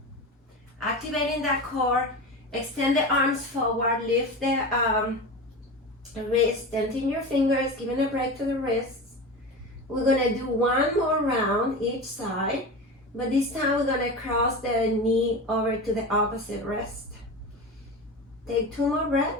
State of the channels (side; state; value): both; normal; correlation 0.27